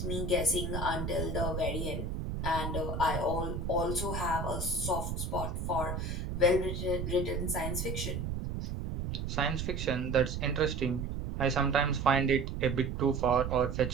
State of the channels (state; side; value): noise; right; rumble, 3 dB below the sound